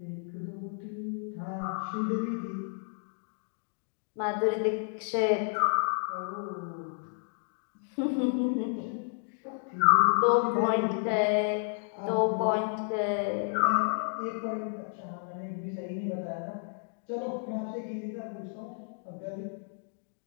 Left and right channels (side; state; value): right; silent; 57 dB below the other